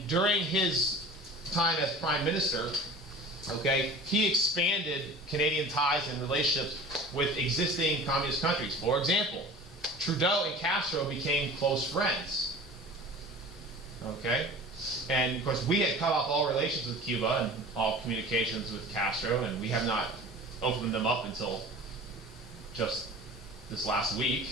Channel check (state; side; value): normal; both; correlation 0.40